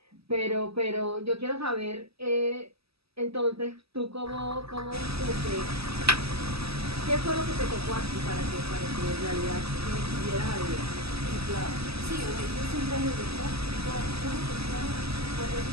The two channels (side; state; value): left; late; 0.77 ms